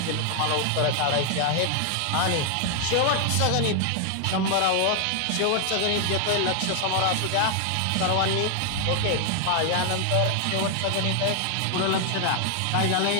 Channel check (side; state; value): both; different; correlation 0.00